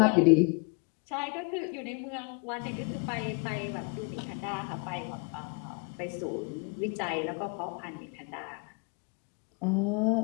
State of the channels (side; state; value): right; quieter; 33.0 dB